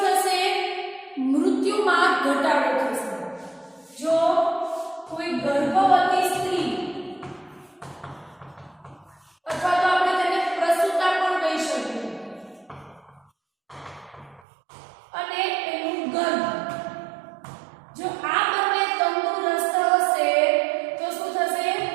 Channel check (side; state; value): left; drops out; at 14.4 s